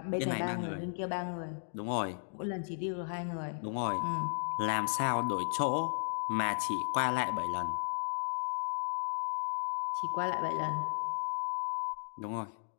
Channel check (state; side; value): silent; right; digital silence